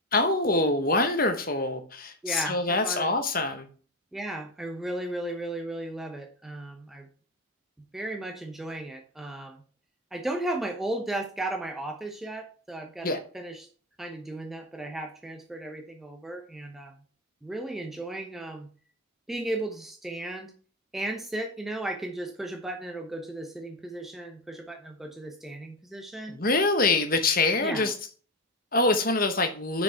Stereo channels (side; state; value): both; normal; correlation 0.15